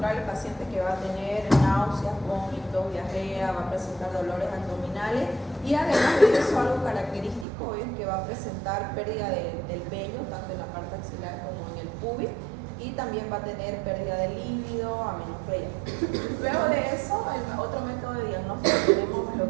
el paciente que va a tener náuseas, vómitos, diarrea, va a presentar dolores abdominales y además de eso algo característico es que va a presentar pérdida del vello, tanto en la parte axilar como en el pubis, y también va a tener pérdida de líbido, amenorrea. Luego de eso, el otro método de diagnóstico tenemos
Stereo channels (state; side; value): drops out; left; at 7.5 s